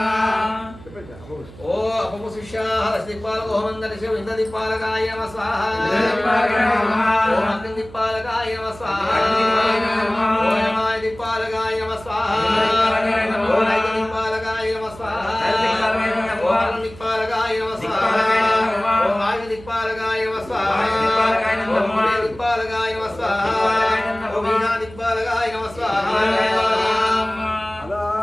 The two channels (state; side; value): noise; right; hum, 19 dB below the sound